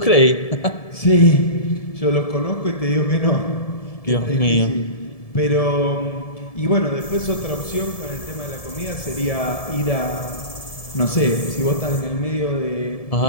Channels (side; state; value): right; late; 1.7 ms